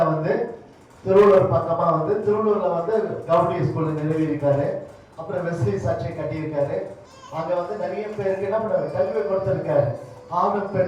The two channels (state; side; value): identical; both; correlation 1.00